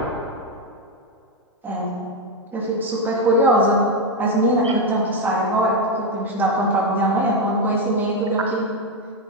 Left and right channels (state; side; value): normal; both; correlation 0.06